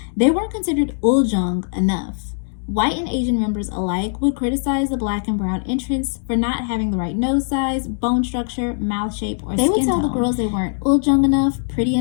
They weren't considered uljung enough. White and Asian members alike would criticize the black and brown entrants for not having the right nose size, bone structure, mouth shape, or skin tone. They would tell the girls they weren't uljung enough, pretty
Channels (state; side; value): silent; right; digital silence